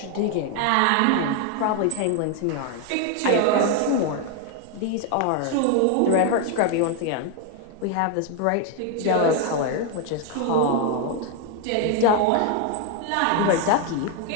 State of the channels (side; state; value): both; different; correlation 0.01